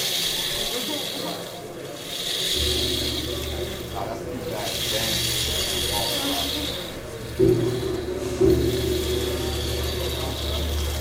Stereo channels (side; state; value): both; identical; correlation 1.00